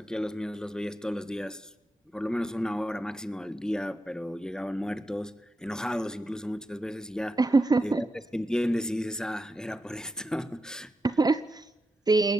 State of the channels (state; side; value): normal; both; correlation 0.86